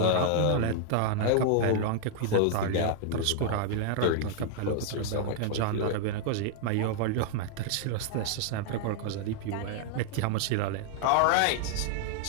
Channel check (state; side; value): different; both; correlation -0.01